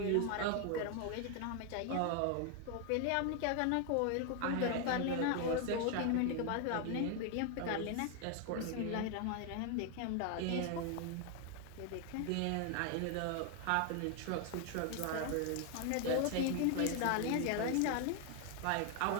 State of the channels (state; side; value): different; both; correlation 0.01